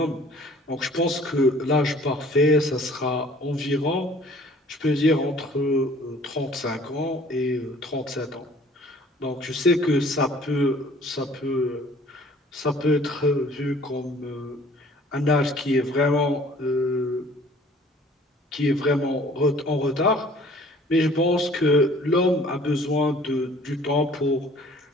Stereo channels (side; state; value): both; normal; correlation 0.53